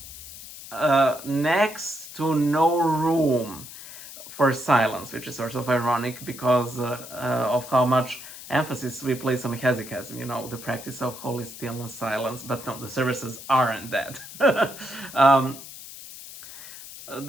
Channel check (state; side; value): noise; left; hiss, 14 dB below the sound